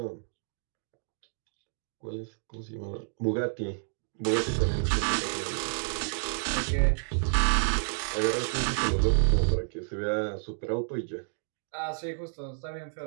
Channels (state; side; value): silent; left; digital silence